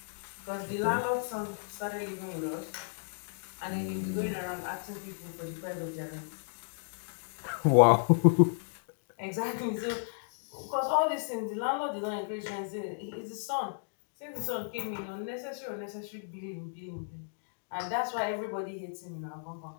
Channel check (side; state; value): right; silent; digital silence